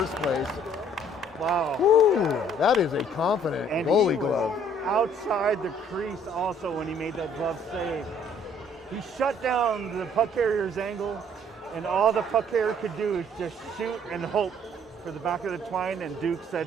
place. Wow. Whew, that is a confident goalie glove. Outside the crease also when he made that glove save. He shut down the puck carrier's angle, and all the puck carrier could do is just shoot and hope for the back of the twine, and Duke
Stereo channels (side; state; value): both; normal; correlation 0.60